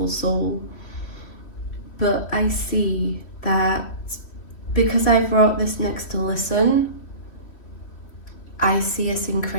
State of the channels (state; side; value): late; right; 3.1 ms